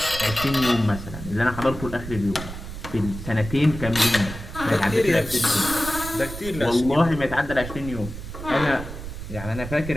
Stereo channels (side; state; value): right; noise; rumble, 10 dB below the sound